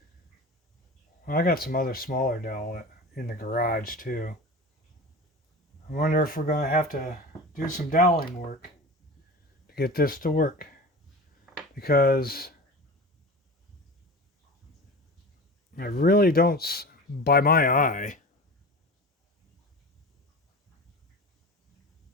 Well, I got some other smaller dowel in the garage too. I wonder if we're going to have to do some doweling work to get this to work. Because I really don't, by my eye,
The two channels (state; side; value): normal; both; correlation 0.33